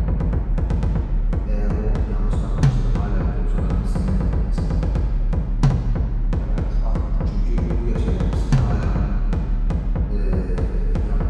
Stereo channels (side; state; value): both; identical; correlation 1.00